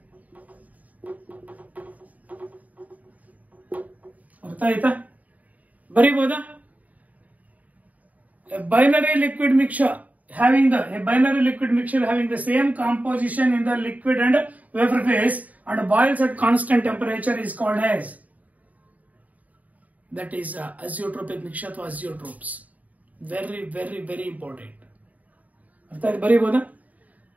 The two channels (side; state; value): left; late; 0.073 ms